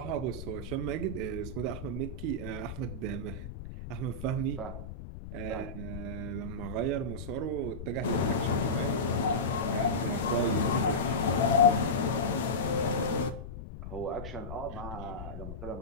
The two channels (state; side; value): noise; left; rumble, 10 dB below the sound